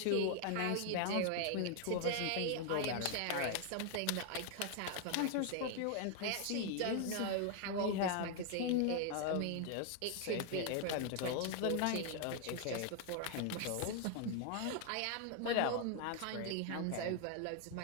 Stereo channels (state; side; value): different; both; correlation 0.00